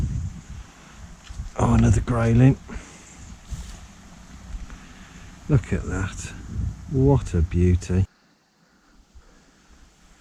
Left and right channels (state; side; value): identical; both; correlation 1.00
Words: Oh, another grayling. Look at that. What a beauty.